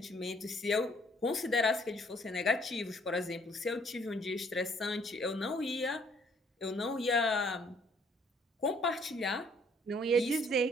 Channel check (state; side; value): normal; both; correlation 0.63